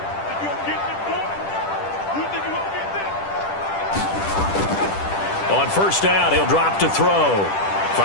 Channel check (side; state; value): right; late; 10 ms